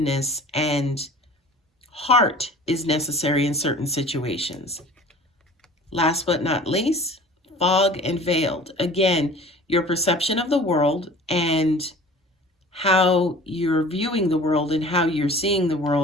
and heart is necessary in certain situations. Last but not least, Fog and Veiled. Again, your perception of the world and how you're viewing the world and how you're seeing the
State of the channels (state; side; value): normal; both; correlation 0.44